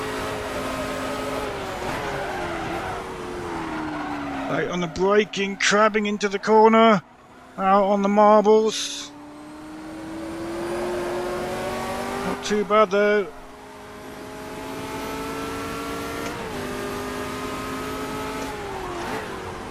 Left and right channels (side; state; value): both; identical; correlation 1.00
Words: Right on the braking, crabbing into the corner. Out on the marbles. Not too bad though.